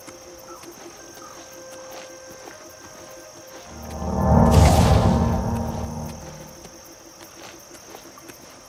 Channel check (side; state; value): both; identical; correlation 1.00